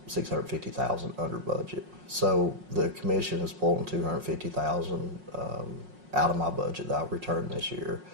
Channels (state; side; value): late; left; 5.5 ms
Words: under budget. So the commission is pulling 250,000 out of my budget that I returned this year